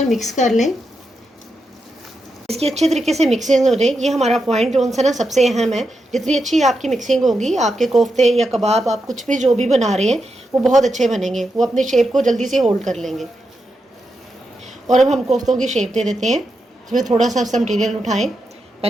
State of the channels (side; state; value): both; normal; correlation 0.86